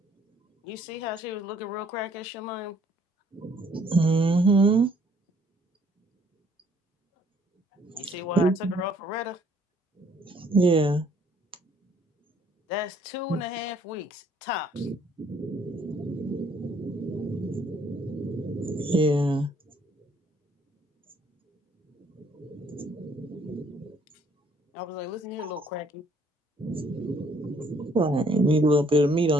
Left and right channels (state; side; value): normal; both; correlation 0.64